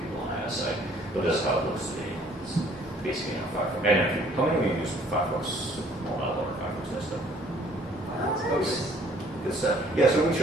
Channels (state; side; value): normal; both; correlation 0.59